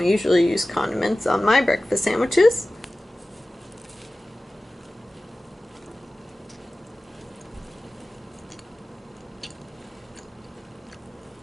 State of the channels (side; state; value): both; normal; correlation 0.96